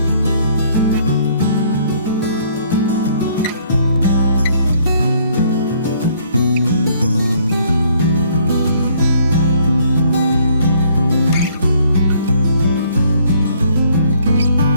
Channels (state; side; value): inverted; both; correlation -0.63